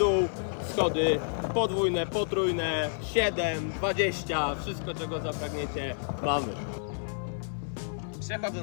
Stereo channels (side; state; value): right; silent; 57 dB below the other